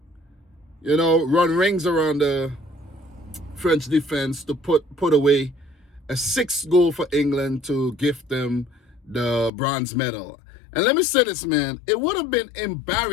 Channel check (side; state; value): right; drops out; at 9.5 s